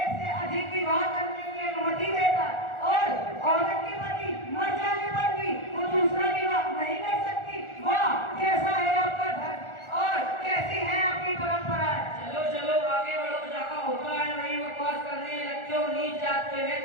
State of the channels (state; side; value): late; right; 1.4 ms